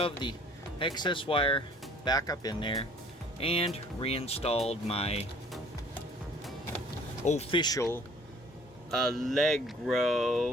the excess wire back up in there and reinstalled my official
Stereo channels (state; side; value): normal; both; correlation 0.54